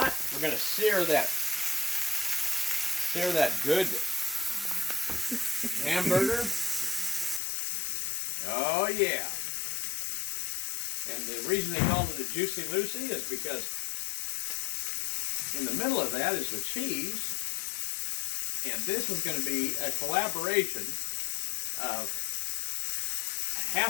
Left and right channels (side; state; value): right; drops out; at 7.4 s